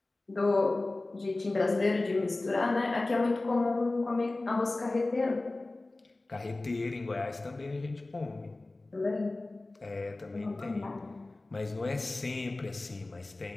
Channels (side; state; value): right; quieter; 3.0 dB